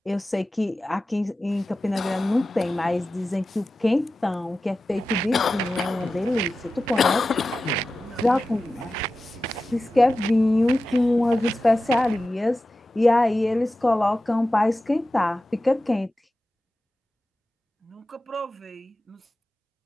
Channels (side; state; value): both; normal; correlation 0.94